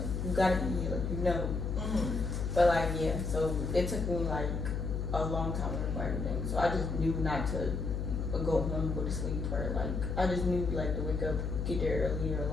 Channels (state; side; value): noise; left; hum, 2 dB below the sound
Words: you gotta be here, like you know. Mhm. But like yeah, so it took me like a long time to learn everything. So I just knew not to go home, go to sleep, or like I just knew like to wake up, get there early, or